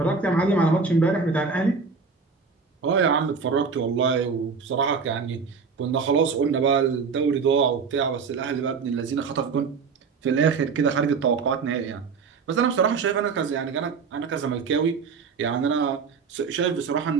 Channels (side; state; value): left; quieter; 5.2 dB